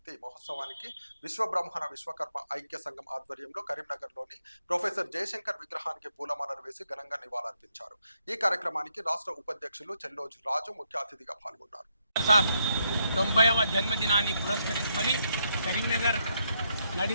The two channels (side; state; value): both; inverted; correlation -0.76